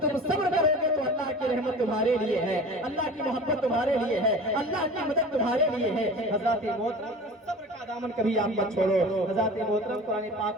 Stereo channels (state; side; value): normal; both; correlation 0.37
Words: تم صبر کرو گے تو اللہ کی رحمت تمہارے لیے ہے، اللہ کی محبت تمہارے لیے ہے، اللہ کی مدد تمہارے لیے ہے۔ حضرت محترم صبر کا دامن کبھی آپ مت چھوڑو۔ حضرت محترم قرآن